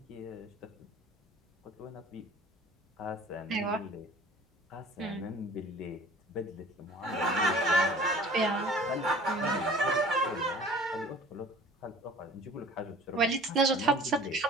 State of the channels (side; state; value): both; normal; correlation 0.47